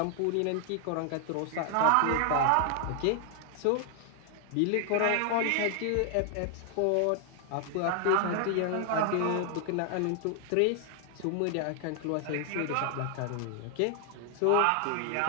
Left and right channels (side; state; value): both; different; correlation 0.00